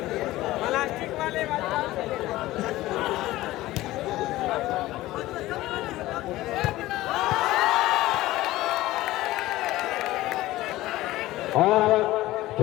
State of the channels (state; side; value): quieter; right; 16.9 dB